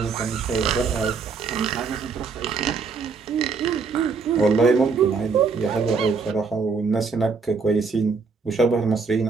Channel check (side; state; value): left; quieter; 4.9 dB